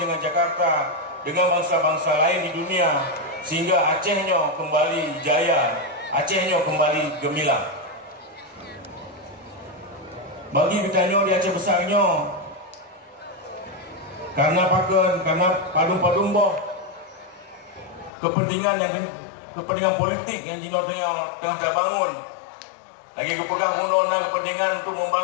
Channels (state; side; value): drops out; right; at 18.1 s